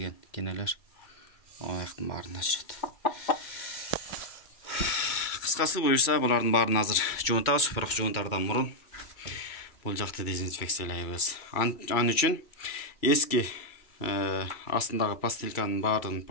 кенелер. Аяктын баарында жүрөт. Кыскасы буюрса, булардын баарын азыр жуунтабыз, бирок жуунтардан мурун бул жакты дезинфекциялайбыз. Ан үчүн эски астындагы пастилканын баарын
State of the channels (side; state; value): right; late; 2.3 ms